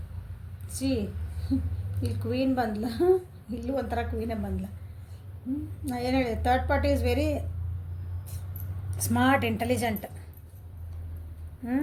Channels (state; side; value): identical; both; correlation 1.00